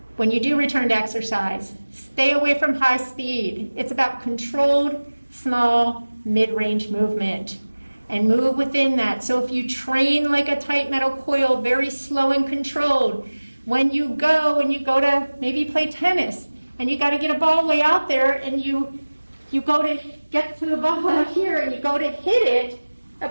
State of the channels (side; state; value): both; inverted; correlation -1.00